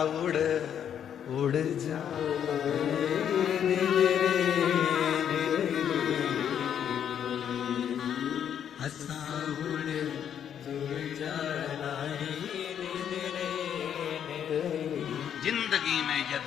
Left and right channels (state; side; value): quieter; right; 9.0 dB